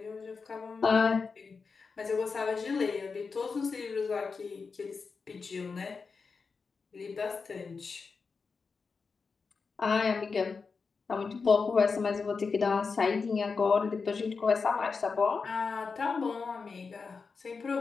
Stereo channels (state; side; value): quieter; right; 4.9 dB